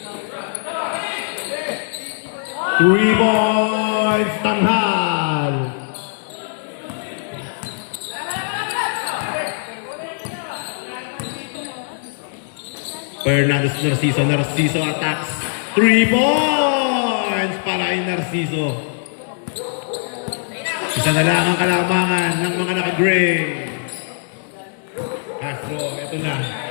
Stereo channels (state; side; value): silent; right; digital silence